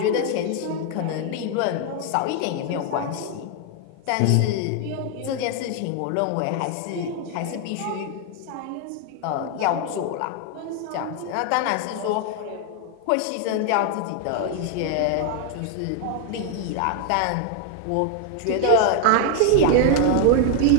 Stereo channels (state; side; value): different; both; correlation 0.00